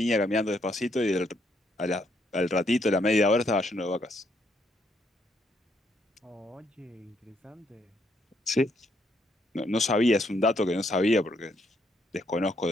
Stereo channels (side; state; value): both; normal; correlation 0.73